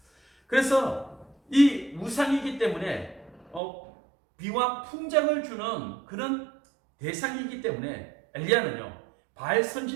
그래서 이 우상이기 때문에 비와 풍작을 주는 그런 대상이기 때문에 엘리야는요, 바알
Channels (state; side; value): drops out; left; at 3.6 s